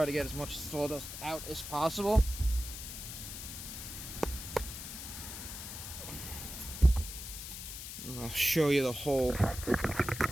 to get as much sawdust out as possible. And I'll show you the hole.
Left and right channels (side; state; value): left; noise; hiss, 9 dB below the sound